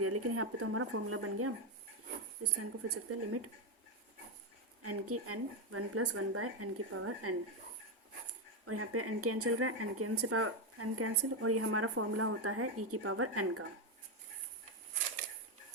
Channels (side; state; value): both; normal; correlation 0.07